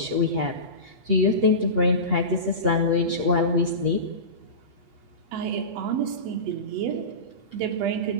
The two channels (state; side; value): late; left; 8.3 ms